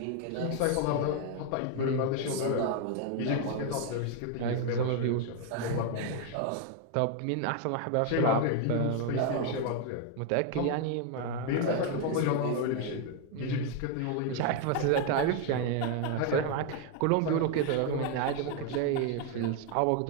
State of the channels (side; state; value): both; different; correlation 0.01